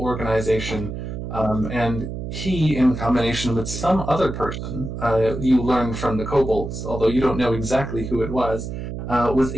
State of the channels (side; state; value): right; noise; hum, 6 dB below the sound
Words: organization. And he, in combination with some other person, you learn from the kobolds, although you don't know exactly who it was